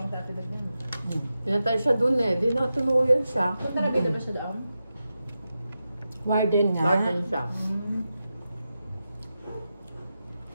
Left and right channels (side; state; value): both; inverted; correlation -0.90